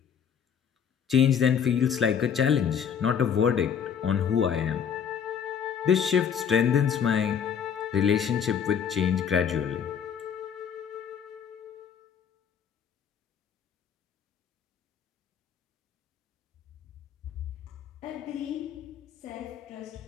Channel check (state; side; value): quieter; right; 7.8 dB